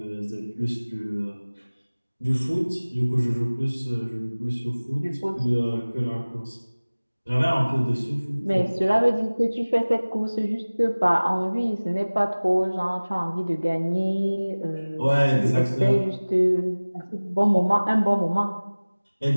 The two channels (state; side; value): inverted; both; correlation -1.00